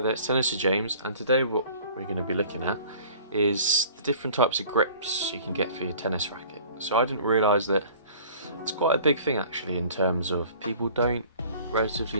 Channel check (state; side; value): inverted; both; correlation -0.48